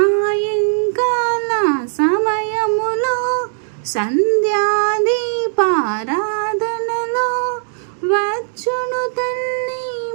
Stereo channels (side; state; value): left; silent; digital silence